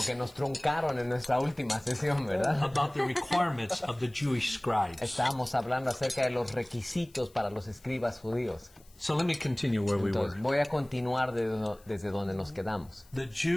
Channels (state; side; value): noise; left; hiss, 28 dB below the sound